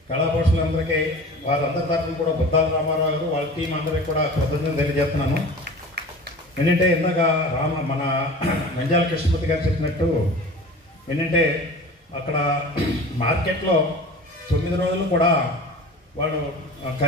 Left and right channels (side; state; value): both; normal; correlation 0.38